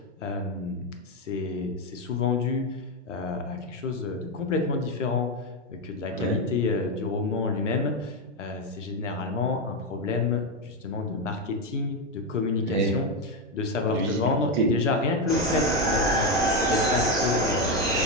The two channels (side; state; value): both; normal; correlation 0.08